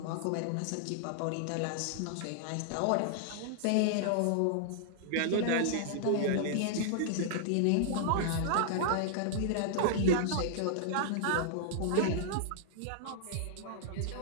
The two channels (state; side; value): different; both; correlation -0.01